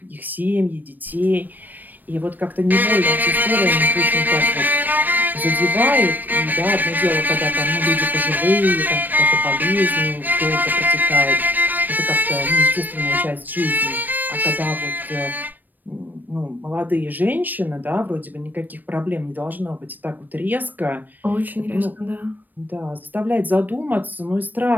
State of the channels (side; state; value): left; late; 0.088 ms